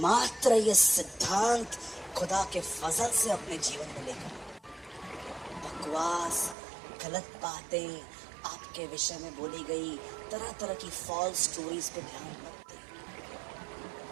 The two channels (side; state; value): left; drops out; at 6.6 s